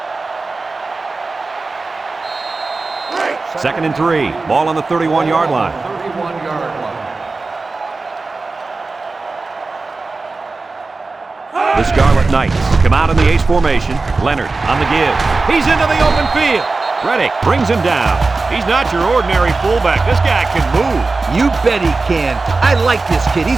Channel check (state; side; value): quieter; left; 3.7 dB